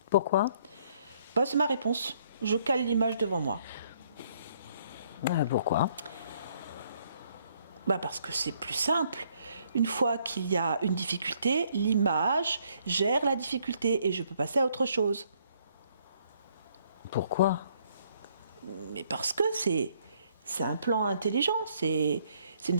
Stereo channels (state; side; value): inverted; both; correlation -0.67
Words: Pourquoi? Bah, c'est ma réponse. Je cale l'image devant moi. Pourquoi? Bah parce que c'est plus simple. Une fois qu'il y a une difficulté, l'image gère la difficulté et je peux passer à autre chose. Pourquoi? Mais parce que c'est un plan intelligent, c'est une